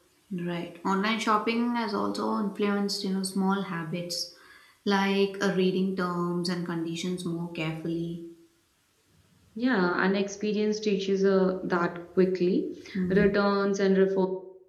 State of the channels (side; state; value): both; identical; correlation 1.00